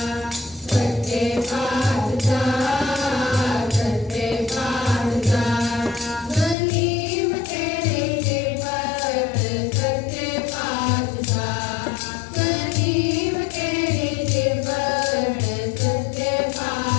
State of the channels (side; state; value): right; drops out; at 6.6 s